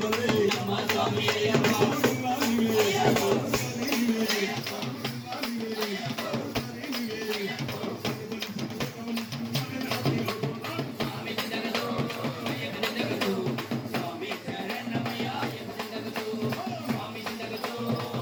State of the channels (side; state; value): both; identical; correlation 1.00